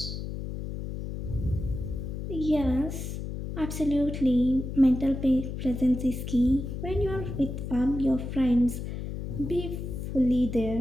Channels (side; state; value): left; noise; hum, 6 dB below the sound